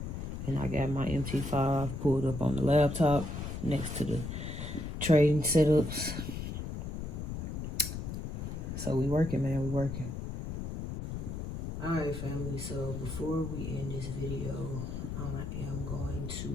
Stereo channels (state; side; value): noise; left; rumble, 5 dB below the sound